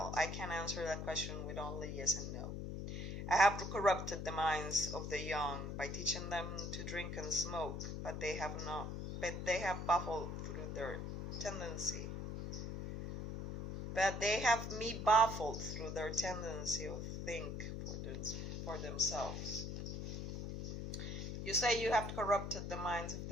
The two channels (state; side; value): noise; left; hum, 5 dB below the sound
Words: that question with only yes and no. I have corrupted the minds of the young by teaching them to drink and smoke, but they have baffled through their tendency. But they have me baffled through their tendency to think for themselves. You say you have corrupted the minds of